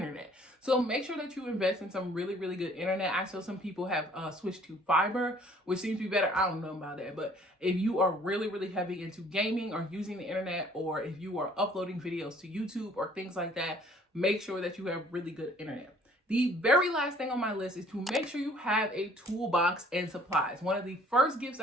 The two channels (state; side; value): normal; both; correlation 0.57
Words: So make sure that you invest in some really, really good internet. I saw some people have switched to fiber, which seems to be better. I don't know about that. But if you are really, really heavy into gaming or using the internet, or if you are uploading videos to YouTube or things like that, make sure that you have really good internet. The very last thing on my list is to make sure you have a toolbox and supplies. One of the first gifts